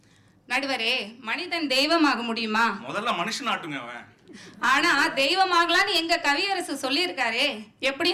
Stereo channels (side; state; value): both; identical; correlation 1.00